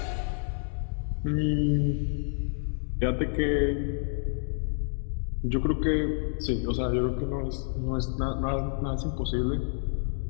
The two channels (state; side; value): silent; right; digital silence